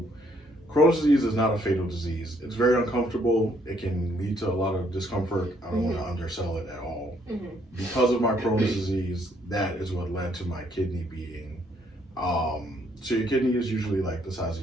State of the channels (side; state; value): both; normal; correlation 0.68